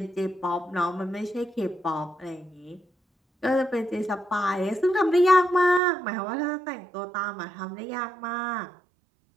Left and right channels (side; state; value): left; drops out; at 5.8 s